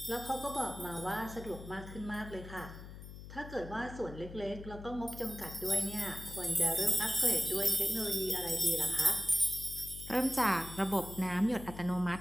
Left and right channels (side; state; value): left; noise; hum, 13 dB below the sound